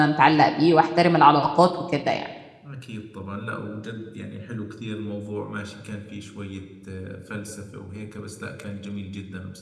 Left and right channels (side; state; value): both; identical; correlation 1.00